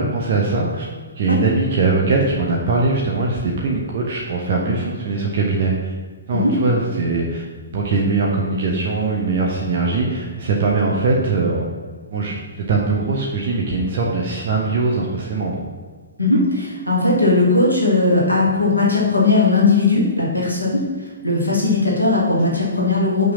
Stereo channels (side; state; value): both; inverted; correlation -0.30